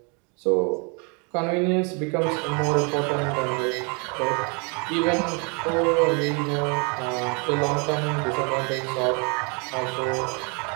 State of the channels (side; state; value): left; quieter; 34.2 dB